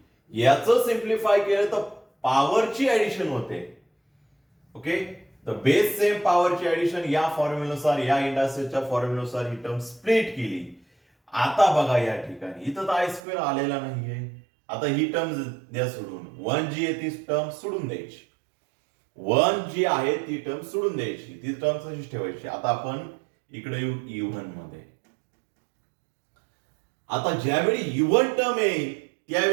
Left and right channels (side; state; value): left; drops out; at 13.2 s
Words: याचं सिम्प्लिफाय केलं तर पॉवरची ऍडिशन होते. ओके, तर बेस सेम पॉवरची ऍडिशन या फॉर्म्युल्यानुसार, या इंडायसेसच्या फॉर्म्युल्यानुसार ही टर्म स्प्लिट केली. आता बघा या ठिकाणी इथं तर आय स्क्वेअर आलेला नाहीये. आता ही टर्म द्या सोडून, 1 जी आहे ती टर्म सोडून द्यायची. 1 जी आहे ती टर्म सोडून द्यायची, ती टर्म तशीच ठेवायची. आता आपण इकडे येऊ इव्हन मध्ये. आता ज्यावेळी इव्हन टर्म येईल